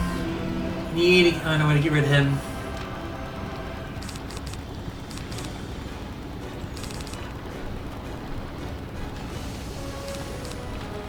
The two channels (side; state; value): both; identical; correlation 1.00